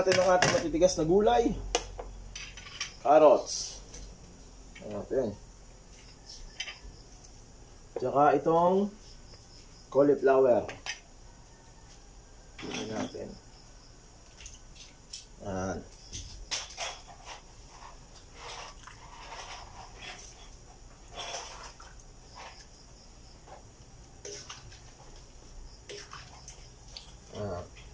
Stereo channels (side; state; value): both; identical; correlation 1.00